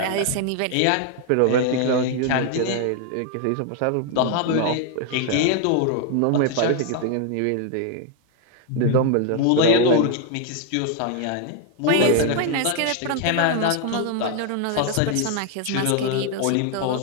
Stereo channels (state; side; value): different; both; correlation 0.00